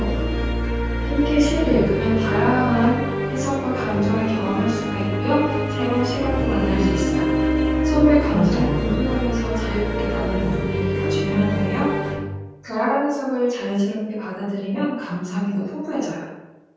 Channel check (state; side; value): identical; both; correlation 1.00